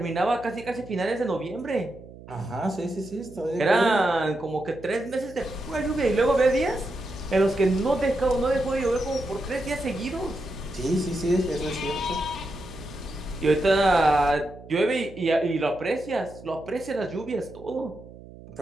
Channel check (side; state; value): right; noise; hum, 18 dB below the sound